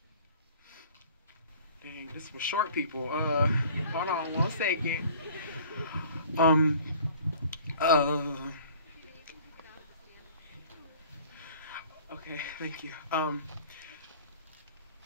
Dang, this was short, people. Hold on 1 second. Okay, thank you.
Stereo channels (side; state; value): both; inverted; correlation -0.50